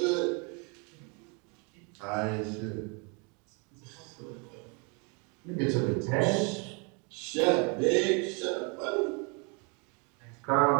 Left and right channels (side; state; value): left; quieter; 33.8 dB